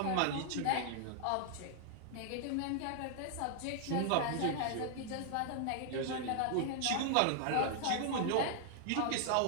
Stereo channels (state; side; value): different; both; correlation -0.01